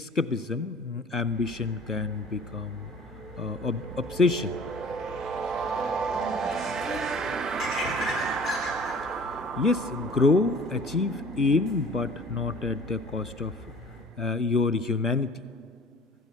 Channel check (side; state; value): both; normal; correlation 0.48